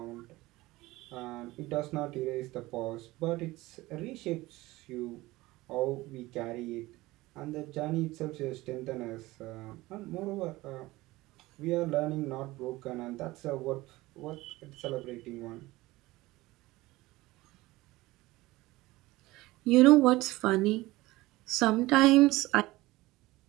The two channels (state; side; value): quieter; left; 19.3 dB